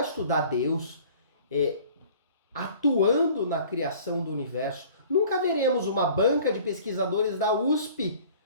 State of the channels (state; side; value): inverted; both; correlation -0.49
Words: estudar Deus atuando na criação do universo. Nunca veremos uma banca de pesquisadores da USP